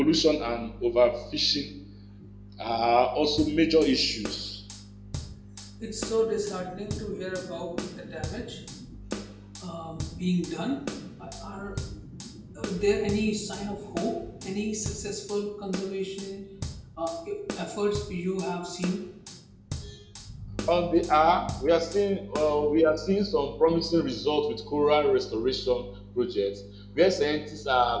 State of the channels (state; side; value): identical; both; correlation 1.00